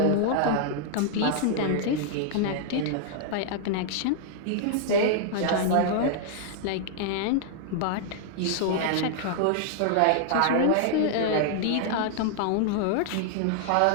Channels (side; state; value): both; different; correlation -0.01